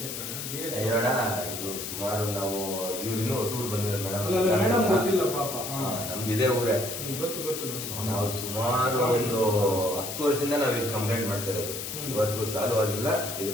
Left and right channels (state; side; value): noise; left; hiss, 6 dB below the sound